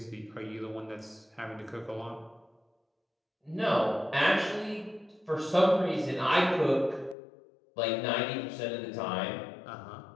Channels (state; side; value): drops out; right; at 7.2 s